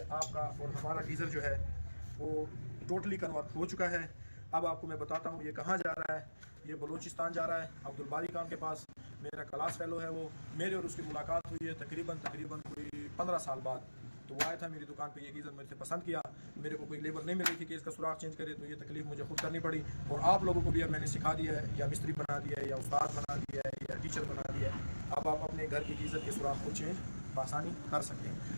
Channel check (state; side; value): inverted; both; correlation -1.00